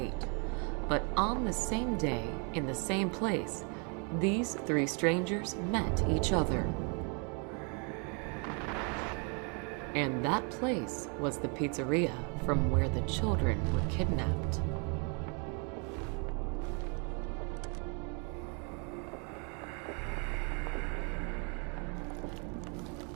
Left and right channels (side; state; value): left; quieter; 36.2 dB